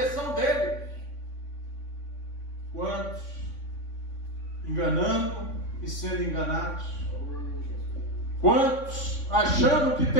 dele. Quantos enganando e sendo enganados? Quantos achando que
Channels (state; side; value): late; right; 3.6 ms